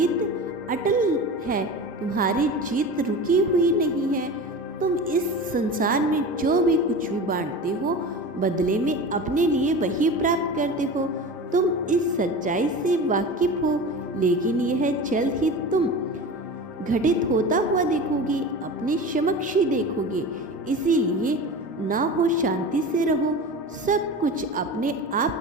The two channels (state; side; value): normal; both; correlation 0.31